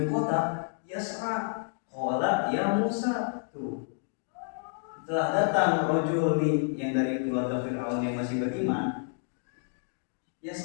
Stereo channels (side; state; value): right; silent; 58 dB below the other